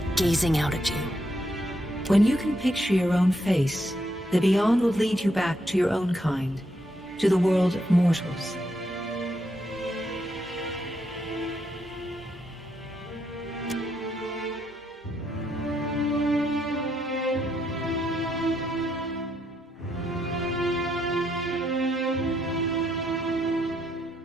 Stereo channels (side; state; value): both; normal; correlation 0.78